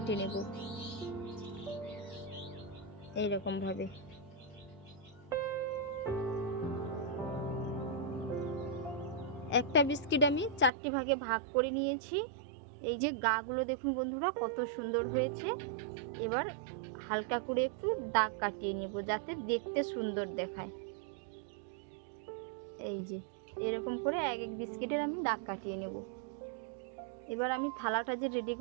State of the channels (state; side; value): drops out; left; at 10.7 s